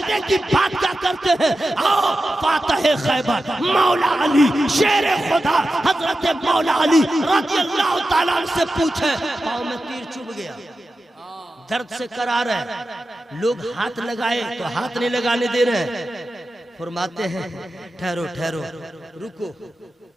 की बात क्या करते हैं। आओ फातिह खैबर मौला अली शेर खुदा हजरत मौला अली रज़ियल्लाहु ताला अन्हु से पूछे, पाँव में तीर चुभ गया, दर्द से करार है, लोग हाथ लगाए तो हाथ नहीं लगाने दे रहे हैं। फरमाते हैं ठहरो ठहरो रुको,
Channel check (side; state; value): both; normal; correlation 0.92